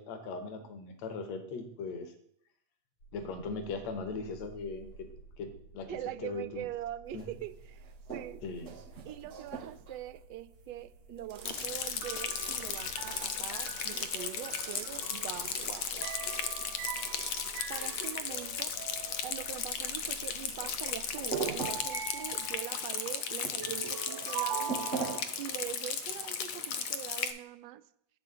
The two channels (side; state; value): right; late; 8.7 ms